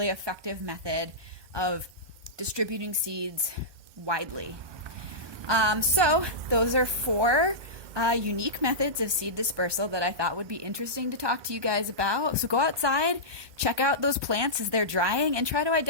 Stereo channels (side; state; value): left; late; 1.7 ms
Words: effective method of distributing seeds widely. So those are 4 unique methods of seed dispersal that I thought would be interesting to talk to you guys about. So go outside, check out those plants as they're drying, and try to